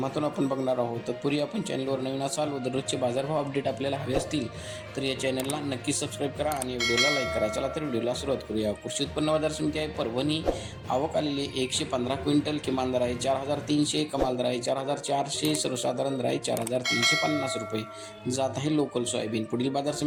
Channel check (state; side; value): identical; both; correlation 1.00